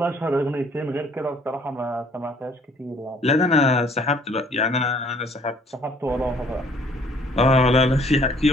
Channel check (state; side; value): normal; both; correlation 0.59